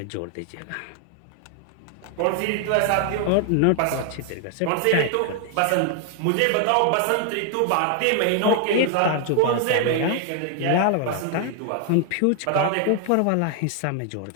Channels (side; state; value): both; different; correlation 0.00